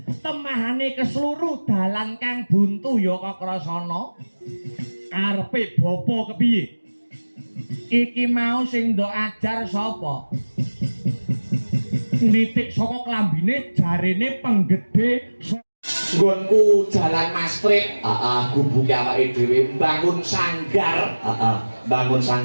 temahane keseluruh dalan kang buntu ya Kakrasana karepe bapa kepiye iki mau sing ndok ajar sapa nitik saka klambine jarene penggede nggonku jalan Mastrit gubuke awake dhewe bangun sanggar bangun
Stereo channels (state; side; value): inverted; both; correlation -1.00